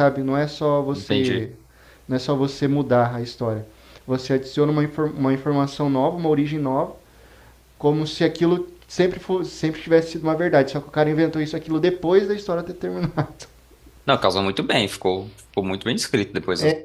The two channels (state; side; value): identical; both; correlation 1.00